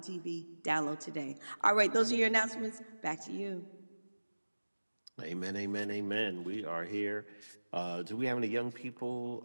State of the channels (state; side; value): inverted; both; correlation -1.00